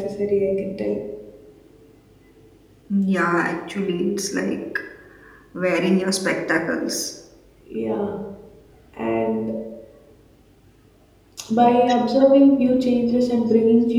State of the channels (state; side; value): identical; both; correlation 1.00